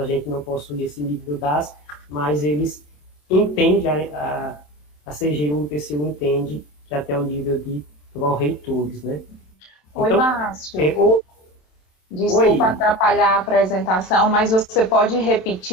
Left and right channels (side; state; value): right; late; 27 ms